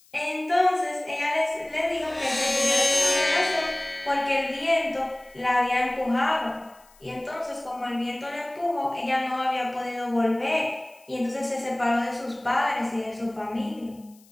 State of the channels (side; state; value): left; noise; hiss, 29 dB below the sound